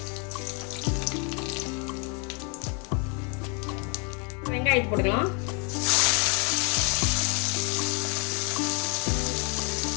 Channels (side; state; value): right; quieter; 35.5 dB